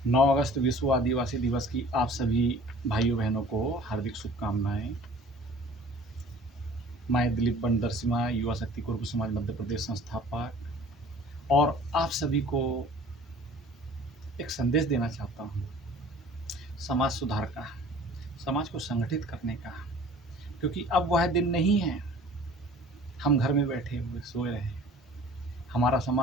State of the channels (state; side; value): normal; both; correlation 0.48